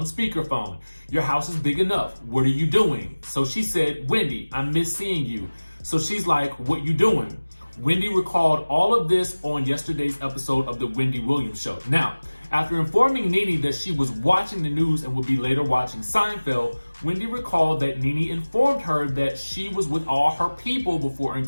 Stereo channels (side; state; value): both; inverted; correlation -1.00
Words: speakerphone? Your house is big enough. What are you doing?" So she said, "Wendy, I miss seeing you." So she's like, "What you doing?" Wendy recalled all of this on yesterday's episode of the Wendy Williams show. Now, after informing Nene that she was watching the news and would be later watching Seinfeld, Wendy recalled that Nene informed her that she was with all her people before